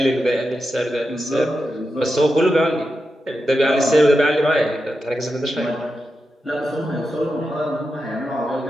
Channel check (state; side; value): normal; both; correlation 0.89